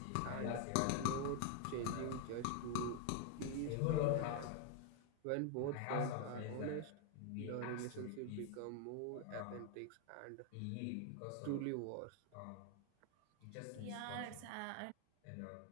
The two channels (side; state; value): both; different; correlation 0.00